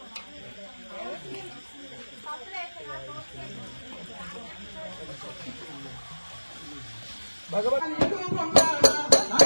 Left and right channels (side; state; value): both; inverted; correlation -1.00